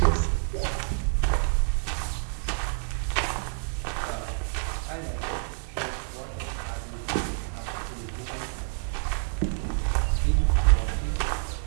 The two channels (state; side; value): silent; left; 59 dB below the other